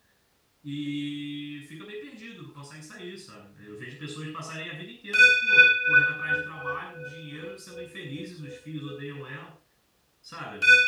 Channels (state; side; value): identical; both; correlation 1.00